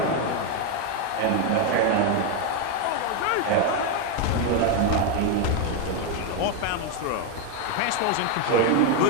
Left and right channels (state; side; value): different; both; correlation 0.02